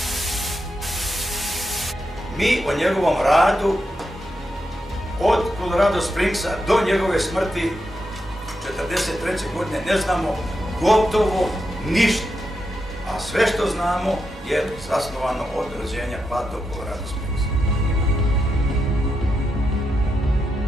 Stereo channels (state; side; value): normal; both; correlation 0.85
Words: Mi o njegovom radu od Colorado Springsa do njegove smrti 1943. godine ne znamo gotovo ništa, a sve što znamo je zasnovano od rođenja pa do Colorado Springsa.